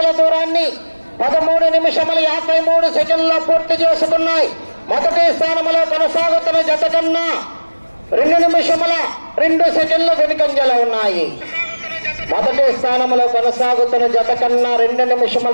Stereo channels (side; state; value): both; inverted; correlation -1.00